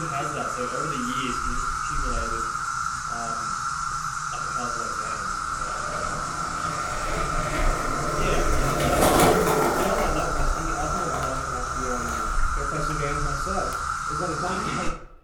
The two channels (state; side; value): identical; both; correlation 1.00